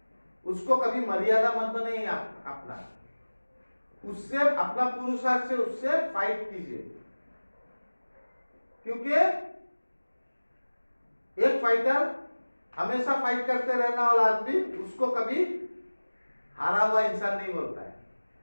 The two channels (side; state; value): both; inverted; correlation -1.00